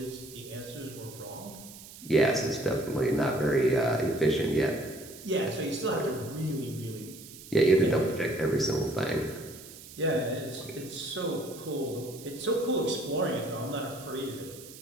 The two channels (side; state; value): right; noise; hiss, 16 dB below the sound